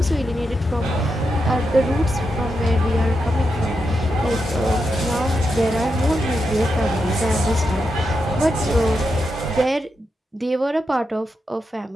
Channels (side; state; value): both; normal; correlation 0.86